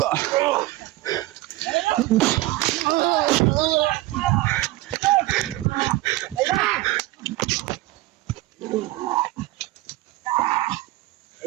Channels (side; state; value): left; quieter; 18.3 dB